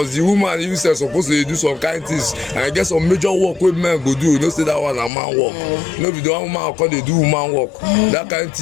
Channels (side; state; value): right; drops out; at 5.1 s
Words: the woman you say supposed to do some kind of things and get some major work wey men go do. You know say that one a man work. No be the one woman call they do woman work. That kind of